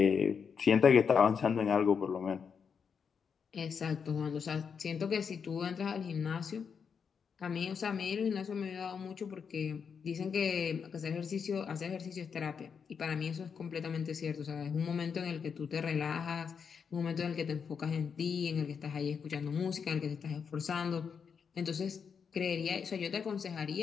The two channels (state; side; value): quieter; right; 6.4 dB